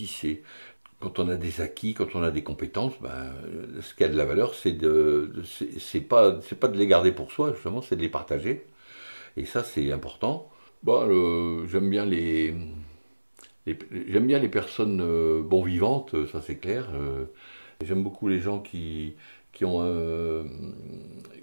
C'est quand on a des acquis, quand on a des compétences, ce qui a de la valeur, c'est pas de les garder pour soi, justement, c'est de les partager. Et ça, c'est important. J'aime bien les personnes bon vivantes, ça c'est clair. J'aime beaucoup les gens qui se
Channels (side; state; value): both; inverted; correlation -1.00